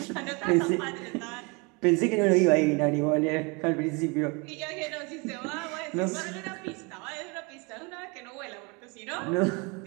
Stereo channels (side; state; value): left; quieter; 29.9 dB